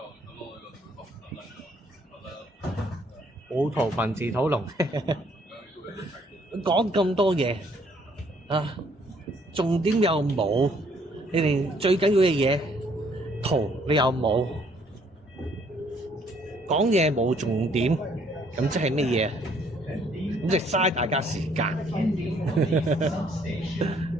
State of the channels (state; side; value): normal; both; correlation 0.64